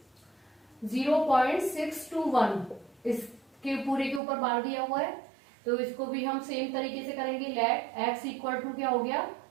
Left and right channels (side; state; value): left; drops out; at 4.2 s